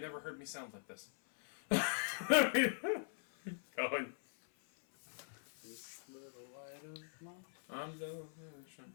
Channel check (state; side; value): silent; right; 50 dB below the other